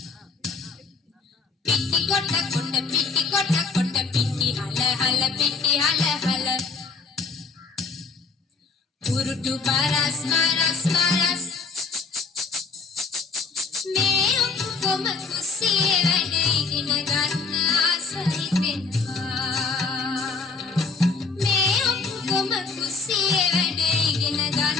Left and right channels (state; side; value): quieter; right; 4.5 dB